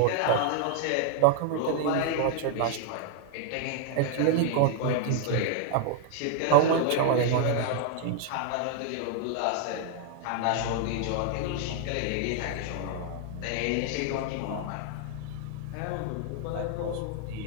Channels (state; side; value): different; both; correlation 0.00